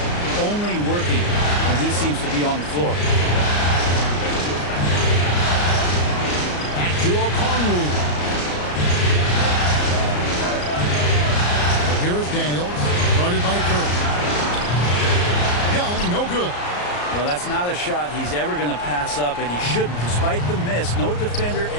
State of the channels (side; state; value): right; late; 34 ms